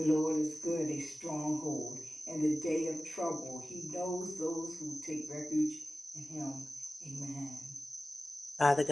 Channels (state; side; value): normal; both; correlation 0.96